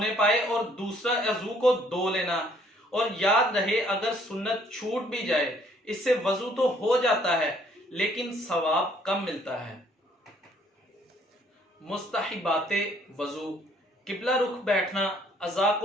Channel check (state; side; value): normal; both; correlation 0.63